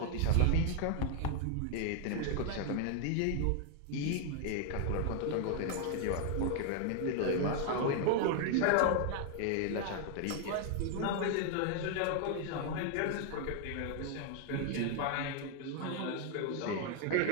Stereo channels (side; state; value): both; different; correlation 0.00